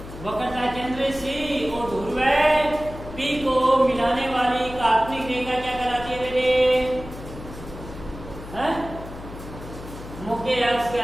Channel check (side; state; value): left; noise; hum, 13 dB below the sound